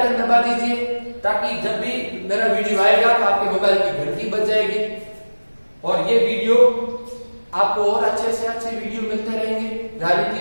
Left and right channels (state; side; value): inverted; both; correlation -1.00